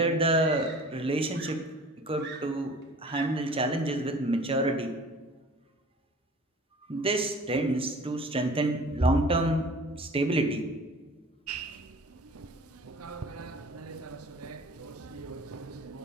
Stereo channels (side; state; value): both; normal; correlation 0.45